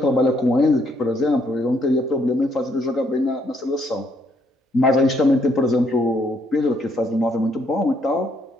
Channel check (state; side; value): normal; both; correlation 0.70